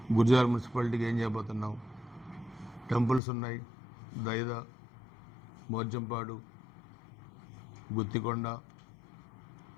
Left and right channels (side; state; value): right; drops out; at 3.2 s